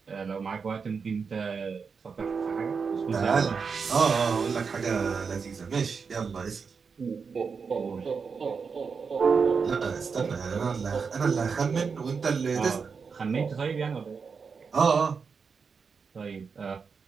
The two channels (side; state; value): left; quieter; 5.5 dB